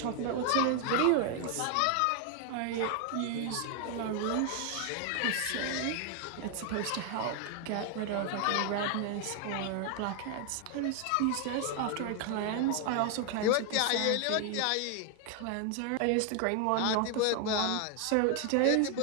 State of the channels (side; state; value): both; different; correlation 0.00